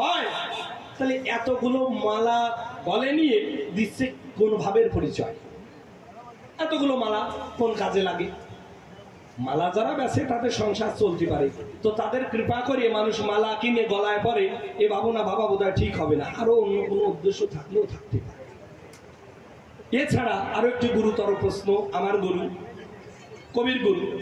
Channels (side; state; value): both; identical; correlation 1.00